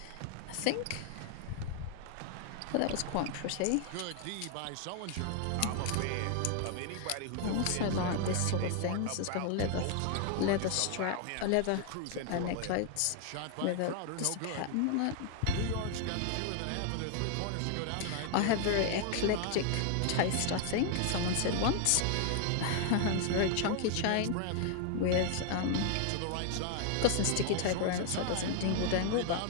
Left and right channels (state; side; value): different; both; correlation 0.00